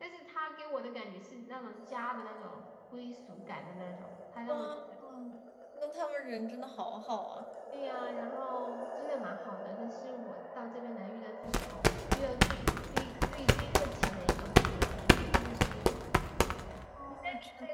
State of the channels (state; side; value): identical; both; correlation 1.00